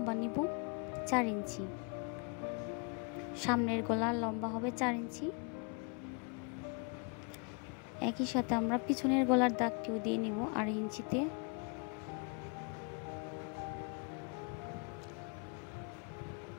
নিব 4 ইঞ্চি। সামনের গলার লম্বা হবে 4 ইঞ্চি। একই সাথে আমরা পিছনের গলার দাগটিও দিয়ে নিব 2.5 ইঞ্চিতে।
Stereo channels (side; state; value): right; quieter; 35.9 dB